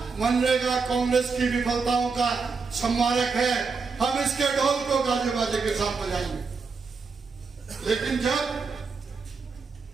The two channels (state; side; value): quieter; left; 4.9 dB